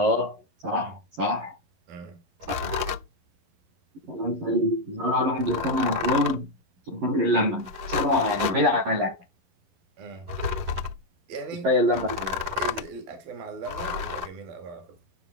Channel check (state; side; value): late; left; 11 ms